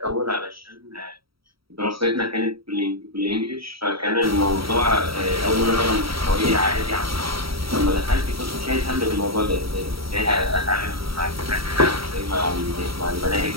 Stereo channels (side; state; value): left; late; 0.75 ms